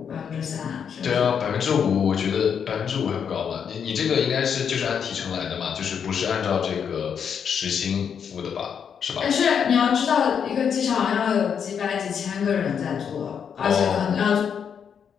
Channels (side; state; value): right; quieter; 7.4 dB